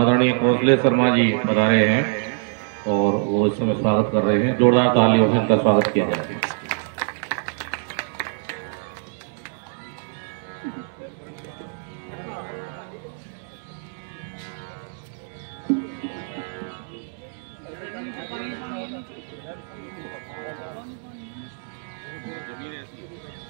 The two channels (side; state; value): left; silent; 62 dB below the other